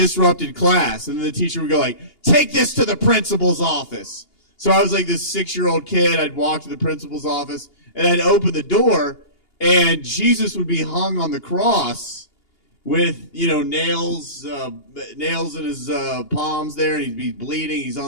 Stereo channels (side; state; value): right; late; 2.8 ms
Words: class, and then the teacher would go like, take this to the principal's office. So I was like this 6-year-old kid. I'd walk to the principal's office, and I'd open the door, and Jesus would be hung on the cross with, nails in his palms there, and he'd be bleeding. He's